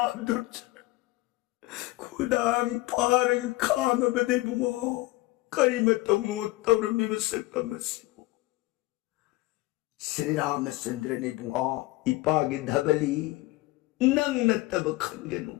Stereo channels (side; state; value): right; quieter; 19.9 dB